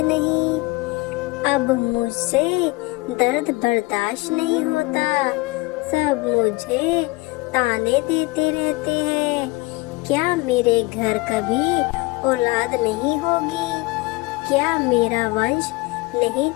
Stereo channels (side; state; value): right; quieter; 23.0 dB